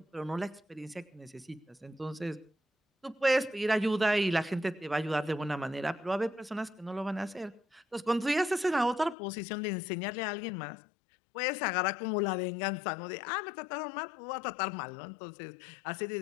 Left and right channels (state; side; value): drops out; right; at 9.2 s